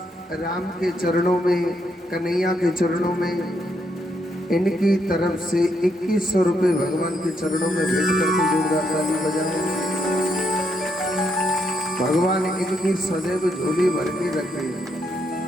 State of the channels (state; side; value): normal; both; correlation 0.77